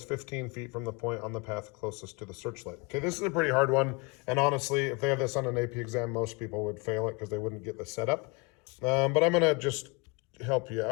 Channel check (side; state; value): right; quieter; 27.6 dB